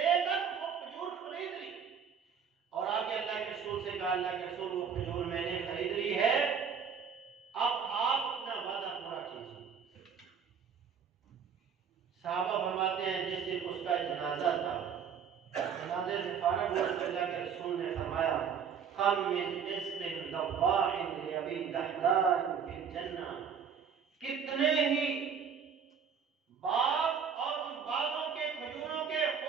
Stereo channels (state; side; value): quieter; left; 7.0 dB